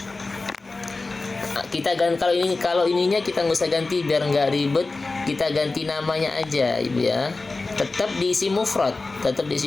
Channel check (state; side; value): quieter; right; 3.5 dB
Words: kita ganti, kalau ininya kita nggak usah ganti biar nggak ribet, kita ganti namanya aja, Ibu ya. Tetap diisi mufrad.